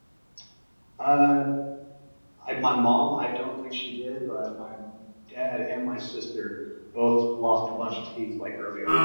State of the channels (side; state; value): both; inverted; correlation -1.00